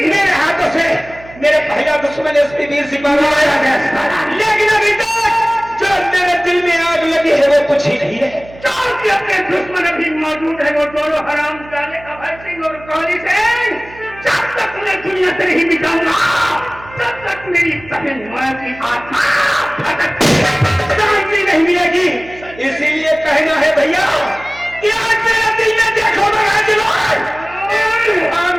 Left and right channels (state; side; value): noise; right; hum, 20 dB below the sound